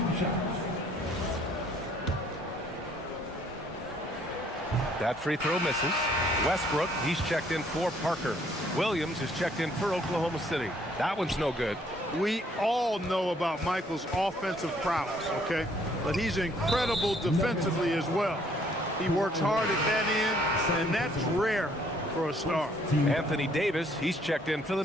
shots. That free throw misses. Westbrook, he's checked in for Parker. Williams is checked in for Oklahoma City. That one's no good. We all know about Michael's offensive prowess, okay? But he's incredible defensively as well. He works hard at that end, and that's rare for a star. Anthony Davis, he's checked in for the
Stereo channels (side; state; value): both; normal; correlation 0.64